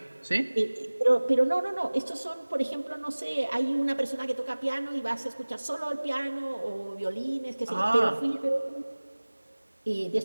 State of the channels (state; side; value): inverted; both; correlation -1.00